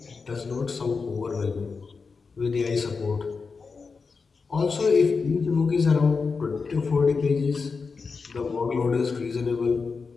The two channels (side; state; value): right; quieter; 4.8 dB